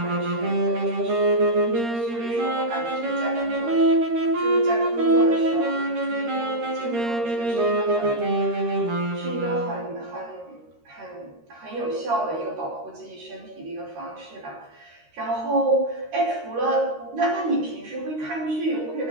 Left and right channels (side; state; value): left; late; 13 ms